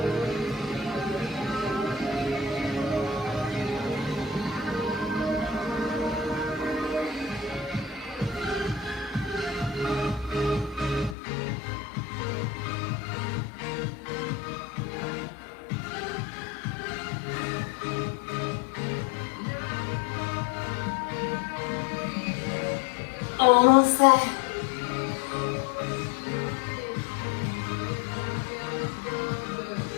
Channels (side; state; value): right; drops out; at 11.2 s